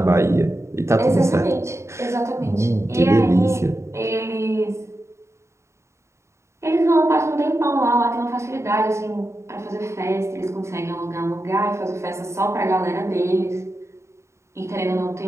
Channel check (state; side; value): late; left; 0.14 ms